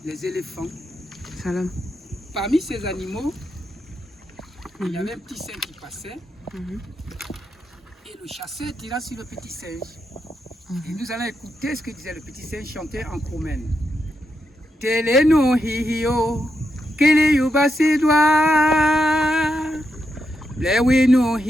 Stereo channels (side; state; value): both; normal; correlation 0.84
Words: les éléphants. Salam. Parmi ces animaux, il y avait un petit singe qui passait. Et le chasseur tira sur le petit singe. Et nous allons écouter ce que disait le petit singe chanté en Kromen. Teleno hihio, kele yuba sidwa. Blewe no